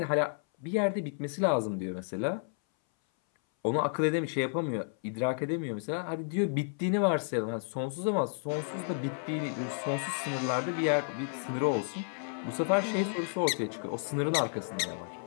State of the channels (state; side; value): silent; right; 57 dB below the other